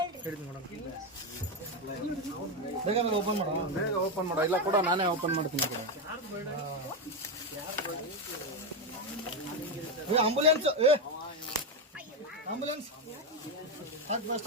ಬೇಗ ಓಪನ್ ಮಾಡ ಇಲ್ಲ ಕೂಡ ನಾನೇ ಓಪನ್ ಮಾಡ್ತೀನಿ. ಆಂಬುಲೆನ್ಸ್ ಆಂಬುಲೆನ್ಸ್ ಹಾಕಿ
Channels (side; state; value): both; normal; correlation 0.08